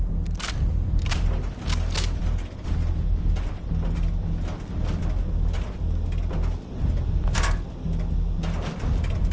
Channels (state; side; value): identical; both; correlation 1.00